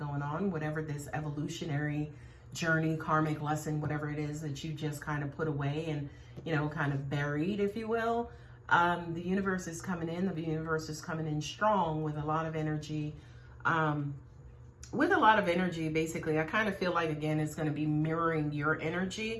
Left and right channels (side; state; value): both; identical; correlation 1.00